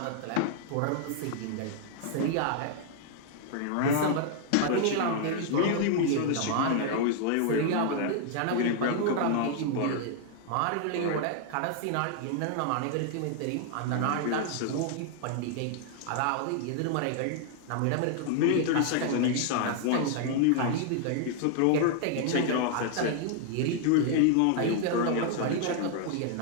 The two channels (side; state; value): both; different; correlation 0.00